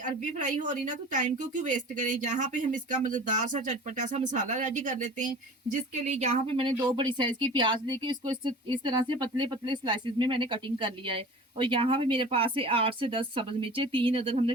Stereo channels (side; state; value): both; normal; correlation 0.40